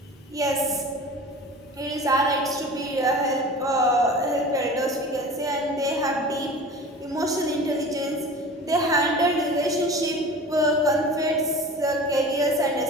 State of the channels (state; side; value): normal; both; correlation 0.37